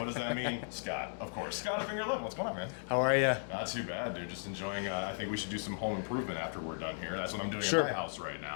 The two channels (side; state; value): right; silent; digital silence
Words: does that mean? Scott, of course. Scott at Finger 11. What's going on, man? How are you? Not too bad, dude. Just enjoying, I think we should do some home improvement after we're done here. That's what I'm doing Sure. at my house right